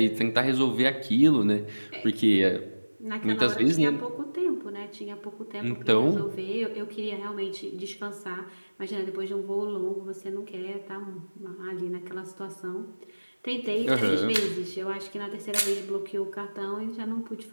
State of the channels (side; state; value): both; inverted; correlation -1.00